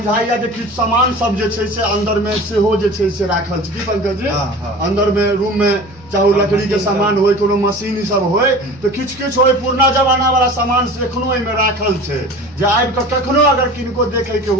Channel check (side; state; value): both; normal; correlation 0.39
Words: जे किछु सामान सब जे छै से अंदर में सेहो जे छै से राखल छै। की पंकज जी अंदर में रूम में चाहे लकड़ी के सामान होय कोनो मशीन ई सब होय तो किछु होय पुरना जमाना वाला सामान से एखनो एहिमे राखल छै, जे आबि कऽ कखनो अगर किनको देखे के